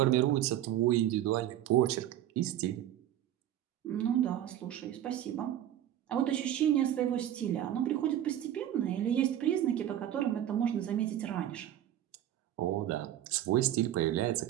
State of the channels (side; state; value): left; quieter; 11.8 dB